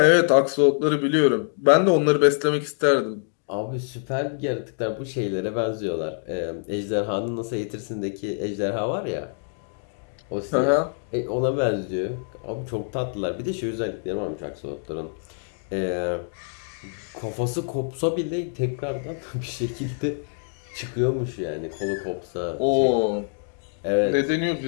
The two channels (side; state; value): right; silent; digital silence